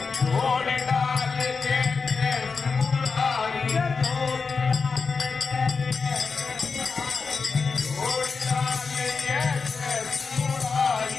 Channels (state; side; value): quieter; right; 4.9 dB